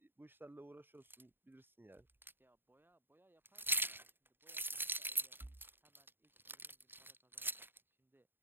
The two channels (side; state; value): left; late; 0.099 ms